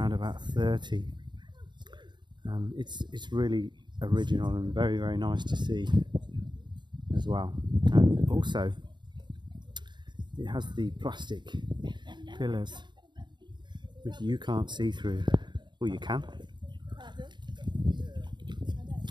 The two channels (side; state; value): left; late; 0.22 ms